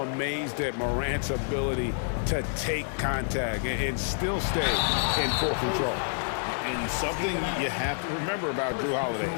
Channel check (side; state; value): right; silent; digital silence